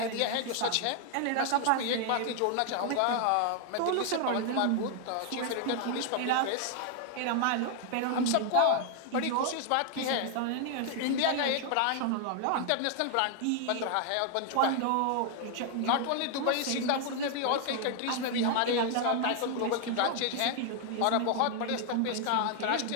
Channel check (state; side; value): different; both; correlation 0.00